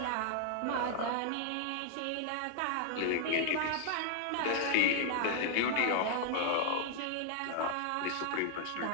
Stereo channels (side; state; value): both; different; correlation 0.00